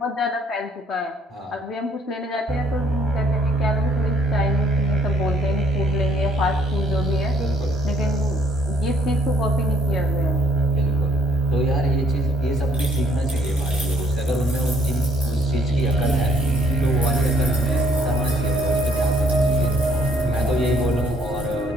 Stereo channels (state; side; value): normal; both; correlation 0.65